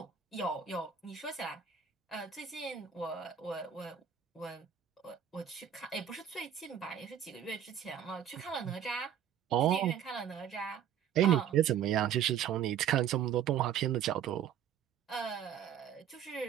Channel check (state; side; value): quieter; left; 9.1 dB